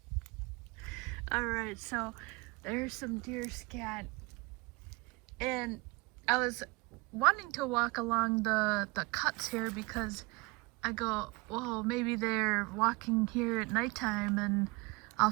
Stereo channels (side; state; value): left; quieter; 25.3 dB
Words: Alright, so there's some deer scat. And I was wanting to walk along the cuts here because I go, well, maybe they're walking here at nighttime and I'll